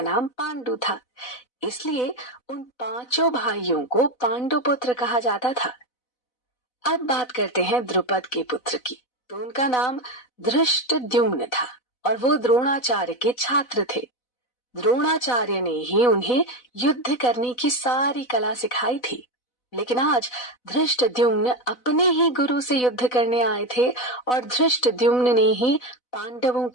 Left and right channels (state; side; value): late; right; 4.0 ms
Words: नाम पांडु था, इसलिए उन 5 भाइयों को पांडु पुत्र कहा जाता था। अब बात करते हैं द्रुपद के पुत्र की। तो उनका नाम धृष्टद्युम्न था और वो द्रोणाचार्य के छात्र थे। द्रोणाचार्य ने ही उन्हें युद्ध करने की सारी कला सिखाई थी। लेकिन आज धृष्टद्युम्न अपने ही गुरु से युद्ध करने आए थे और धृष्टद्युम्न ने ही पांडवों